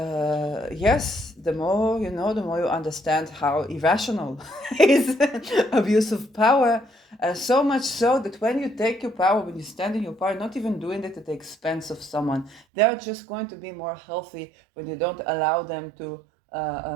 yes, the more you know, the more you understand how irrational is abuse of power. So much so that when you take your power, when you stand in your power, not even doing it at the expense of someone, they are just going to be more healthy when you don't allow them to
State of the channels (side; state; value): left; drops out; at 12.6 s